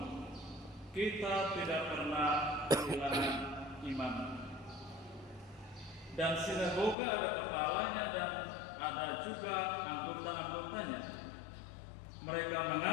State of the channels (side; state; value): right; drops out; at 7.0 s